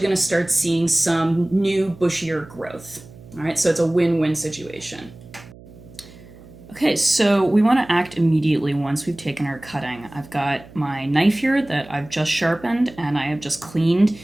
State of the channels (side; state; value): right; noise; hum, 20 dB below the sound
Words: to start seeing some new bushier growth. All right, so it's a win-win situation. Okay, so we want to act immediately once we've taken our cutting. I've got my knife here that I've just sharpened and I have just cleaned.